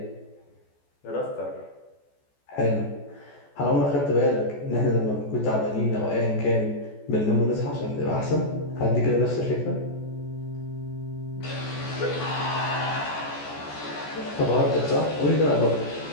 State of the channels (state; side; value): late; right; 14 ms